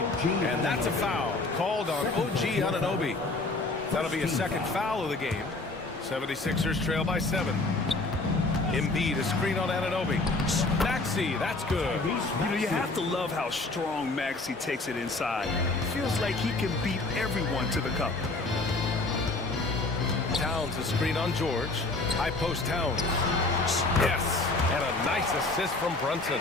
And that's a foul called on OG Anunoby. That'll be a second foul of the game. 76ers trail by 7. Embiid, a screen on Anunoby. Maxey, that's good. You know, you have to love how strong Maxey takes it inside. Feels like he can beat everyone to the cup. Towns, a screen on George. High post Towns. Yes, and a nice assist from Brunson.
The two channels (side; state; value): right; quieter; 3.2 dB